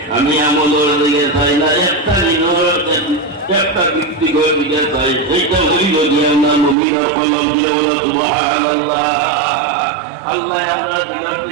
আমি আমলের দিকে চাই না একটা একটা ব্যক্তিগত দিকে চাই সেইটা হইল দিয়ে আমরা মুমিনের কলম দিয়ে বলো সুবহানাল্লাহ আল্লাহ আমরা দিনের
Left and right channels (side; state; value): left; drops out; at 6.8 s